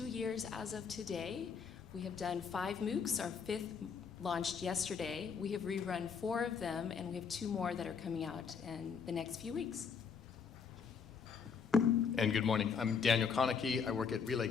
years as of today. We have done 5 MOOCs, our 5th launched yesterday. We have rerun 4 of them, and we have 2 more that are coming out in the next few weeks. And good morning. I'm Daniel Konecki. I work at Relay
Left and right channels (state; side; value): quieter; right; 6.2 dB